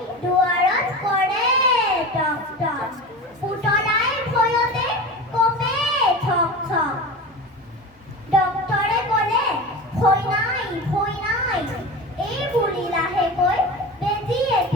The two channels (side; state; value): both; normal; correlation 0.30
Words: দুৱাৰত কৰে টক টক। পুতলাই ভয়তে কপে ঠক ঠক। ডক্তৰে ক'লে, ভয় নাই ভয় নাই। এই বুলি লাহেকৈ বেজী